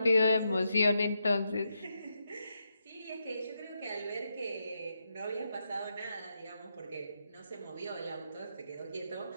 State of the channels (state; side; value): inverted; both; correlation -0.84